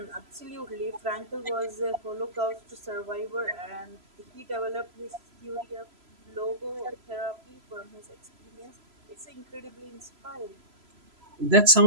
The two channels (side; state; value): left; late; 3.0 ms